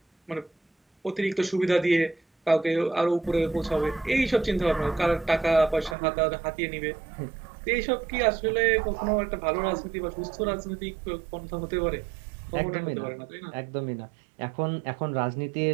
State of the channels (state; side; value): drops out; left; at 6.0 s